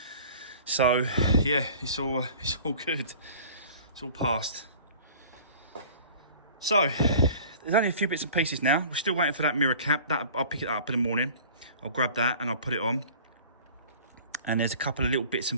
So yeah, it's all good. It's all passed. So there's only a few bits and pieces now. We're still waiting for that mirror cap. That I'll pick it up in the morning. I'll grab that and I'll put it on. And there's a couple of little bits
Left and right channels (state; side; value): inverted; both; correlation -0.45